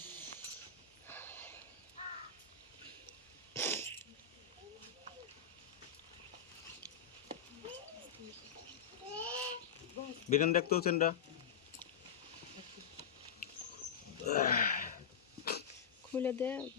বেগান দেখতো চেনটা খুলে দে,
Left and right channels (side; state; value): right; quieter; 7.1 dB